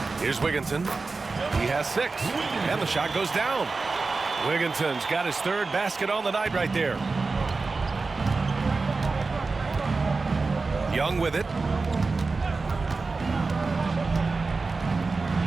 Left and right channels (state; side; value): quieter; left; 4.0 dB